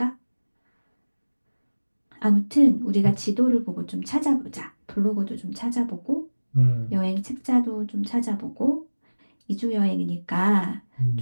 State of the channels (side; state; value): both; inverted; correlation -1.00